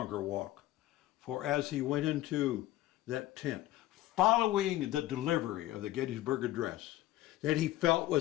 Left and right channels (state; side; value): quieter; right; 15.5 dB